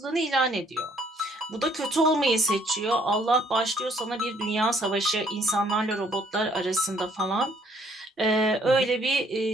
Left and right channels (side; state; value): both; normal; correlation 0.63